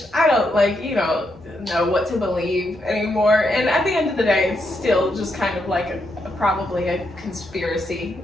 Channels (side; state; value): both; normal; correlation 0.80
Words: I don't know what to believe anymore. And at the end of the day, it's still just kind of like probably a conspiracy.